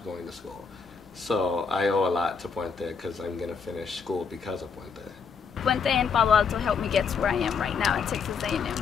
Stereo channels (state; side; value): quieter; right; 5.7 dB